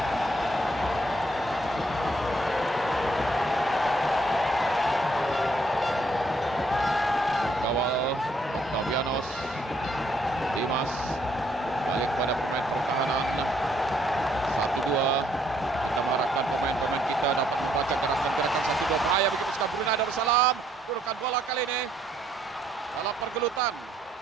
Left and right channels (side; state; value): both; normal; correlation 0.70